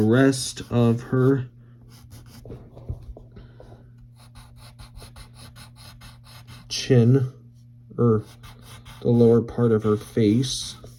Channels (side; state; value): both; identical; correlation 1.00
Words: of her chin, or the lower part of her face.